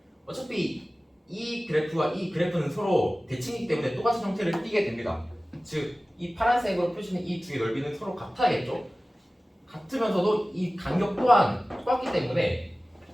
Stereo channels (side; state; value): both; normal; correlation 0.97